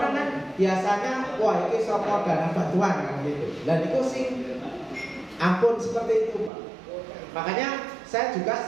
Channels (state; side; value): drops out; left; at 6.5 s